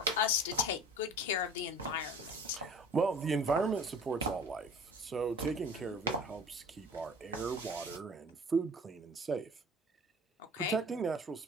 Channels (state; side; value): normal; both; correlation 0.43